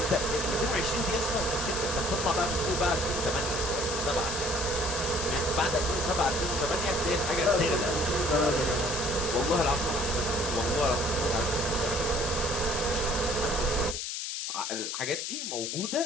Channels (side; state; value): left; noise; hiss, 4 dB below the sound